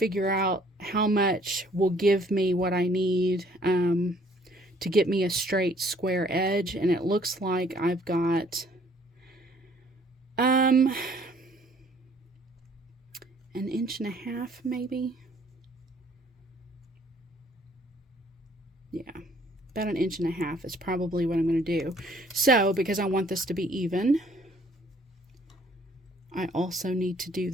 out how much will give me what I need to get me a straight square edge, and it looks like I've got an 1.5 inches maybe. Yeah, about 1.5 inches is probably what I'm going to do. So, because I want this to be even, I also need to do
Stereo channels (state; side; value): normal; both; correlation 0.60